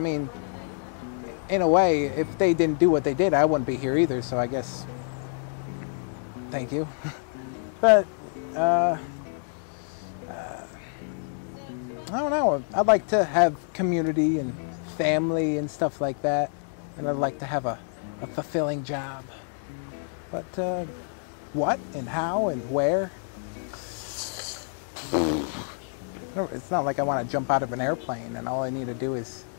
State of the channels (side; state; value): right; silent; 60 dB below the other